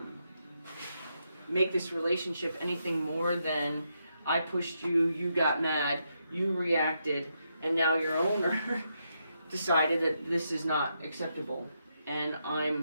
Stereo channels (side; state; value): both; inverted; correlation -0.81